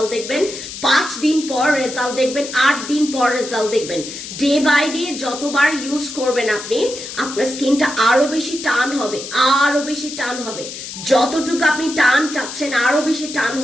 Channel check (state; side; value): noise; left; hiss, 10 dB below the sound